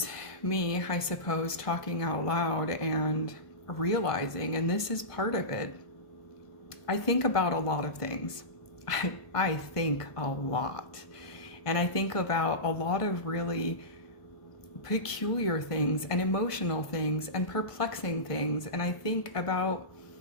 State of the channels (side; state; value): right; late; 1.5 ms